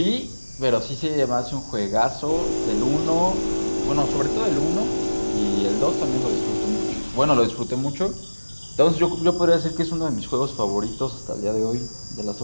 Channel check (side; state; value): both; inverted; correlation -1.00